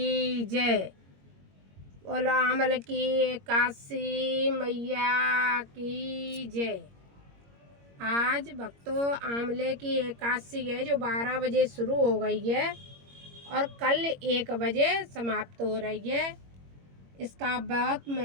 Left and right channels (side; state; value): left; late; 21 ms